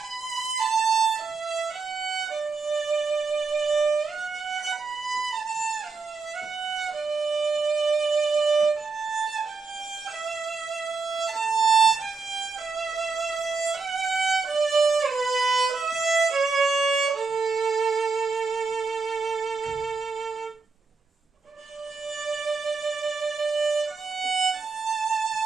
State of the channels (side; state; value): left; quieter; 4.5 dB